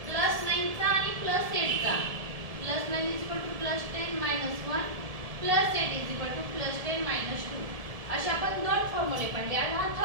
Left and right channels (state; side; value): late; left; 1.7 ms